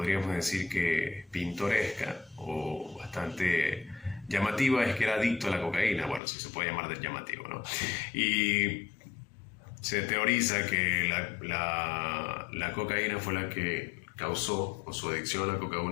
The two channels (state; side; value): drops out; right; at 6.2 s